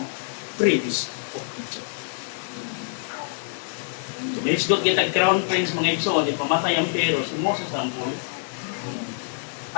prince of Egypt. So minisgot kita crown prince mga igsoon, di pamatay ang Pharaoh, si Moses ang buhay.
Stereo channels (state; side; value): silent; right; 58 dB below the other